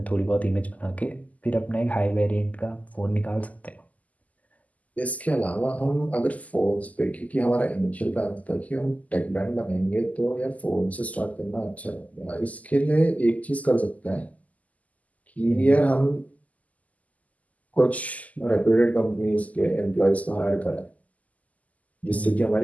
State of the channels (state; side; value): late; right; 0.075 ms